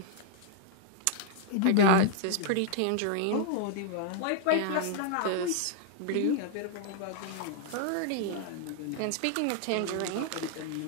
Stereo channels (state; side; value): different; both; correlation -0.01